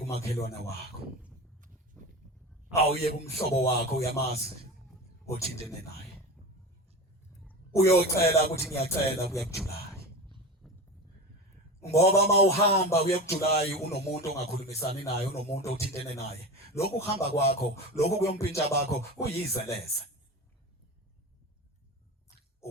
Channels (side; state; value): both; normal; correlation 0.28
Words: wakho awuye kumhlobo wakho uyamazi othintene naye uyocela ukuthi ngiyacela kuya kuJulayi ngoba mawuhamba kuya kuJulayi unomuntu ongakhulumisani naye unomuntu othintene naye lokhu kuhamba kwakho lokhu kuyompintsha bakho kuyizeleze